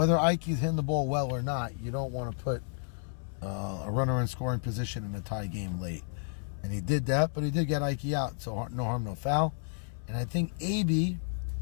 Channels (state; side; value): silent; right; 57 dB below the other